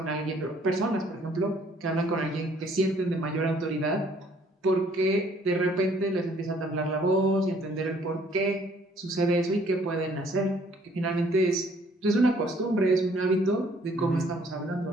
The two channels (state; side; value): normal; both; correlation 0.61